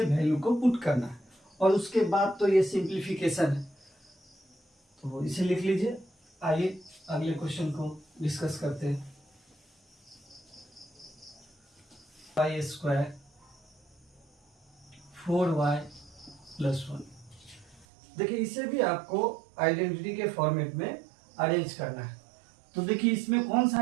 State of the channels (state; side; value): drops out; left; at 17.9 s